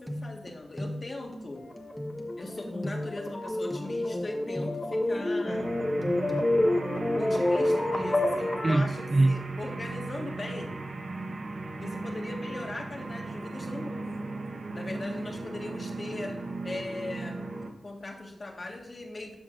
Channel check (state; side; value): normal; both; correlation 0.95